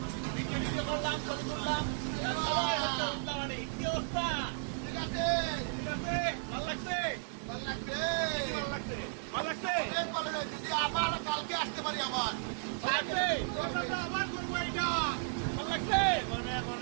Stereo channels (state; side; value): silent; left; digital silence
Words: ভিডিও করলাম, ছবি তুললাম, সবাই হচ্ছে উল্লাবাড়ি। কি অবস্থা? ঠিক আছে, ভালো লাগছে? ভালো লাগছে, ভালো লাগছে। যদি আবার কালকে আসতে পারি, আবার ভালো লাগছে, আবার করবো এটা। ভালো লাগছে,